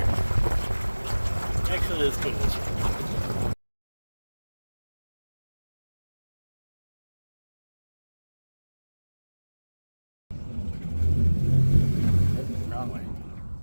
Actually, let's go to this one. Wrong way.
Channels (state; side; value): inverted; both; correlation -1.00